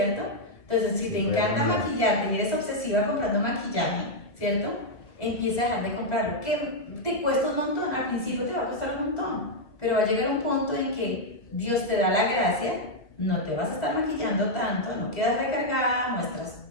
Entonces, si te encanta maquillarte y eres obsesiva comprando maquillaje, ¿cierto? Empieza a dejar de comprarlo, que te cuesta un montón, al principio te va a costar un montón, pero va a llegar un punto en que Dios te da la gracia, no te vas a estar maquillando tanto, no quedas recargada,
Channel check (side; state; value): right; late; 2.0 ms